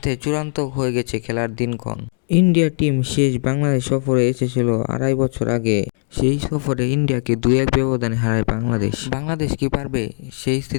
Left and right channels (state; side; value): silent; right; 66 dB below the other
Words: চূড়ান্ত হয়ে গেছে খেলার দিনক্ষণ। ইন্ডিয়া টিম শেষ বাংলাদেশ সফরে এসেছিল 2.5 বছর আগে। সেই সফরে ইন্ডিয়াকে 2-1 ব্যবধানে হারায় বাংলাদেশ। বাংলাদেশ কি পারবে সেই